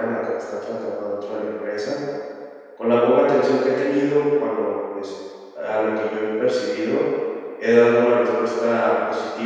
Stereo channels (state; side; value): identical; both; correlation 1.00